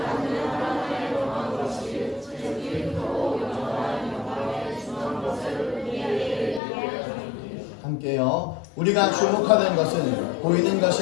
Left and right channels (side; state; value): right; drops out; at 6.6 s